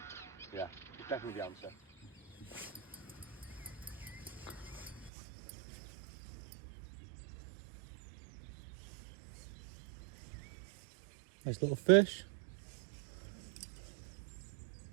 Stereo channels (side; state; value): left; drops out; at 5.1 s